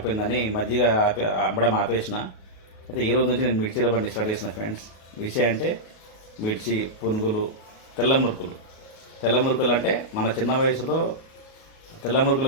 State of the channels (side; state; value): right; late; 37 ms